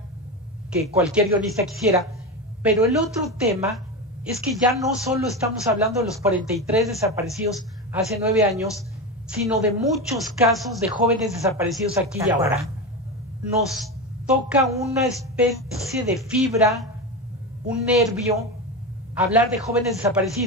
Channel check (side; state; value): both; normal; correlation 0.19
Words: que cualquier guionista quisiera, pero el otro tema es que ya no solo estamos hablando de los 43 desaparecidos hace 9 años, sino de muchos casos de jóvenes desaparecidos aquí y ahora. Nos toca una especie de fibra, un nervio, hablar de jóvenes